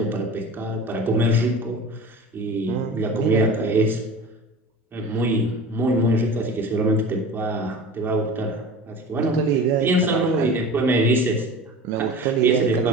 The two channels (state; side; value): normal; both; correlation 0.36